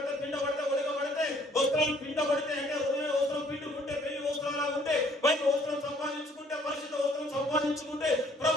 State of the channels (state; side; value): normal; both; correlation 0.60